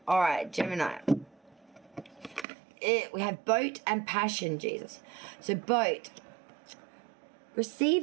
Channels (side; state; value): left; drops out; at 2.5 s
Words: All right, Gemini. We have boat and passion, Jesus. So boat,